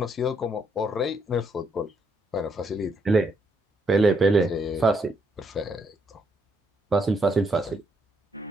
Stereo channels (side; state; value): both; normal; correlation 0.75